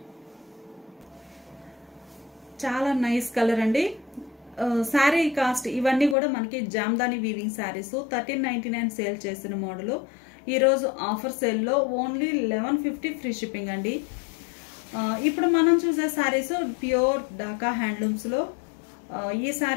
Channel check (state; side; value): drops out; right; at 6.2 s